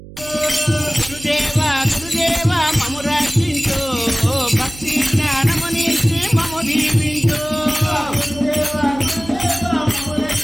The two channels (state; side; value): noise; right; hum, 17 dB below the sound